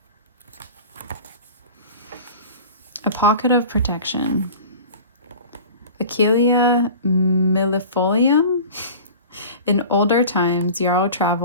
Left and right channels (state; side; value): inverted; both; correlation -0.38